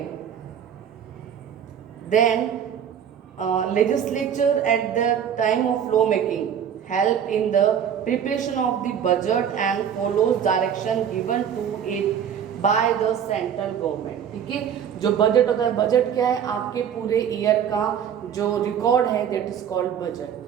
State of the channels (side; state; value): left; quieter; 8.5 dB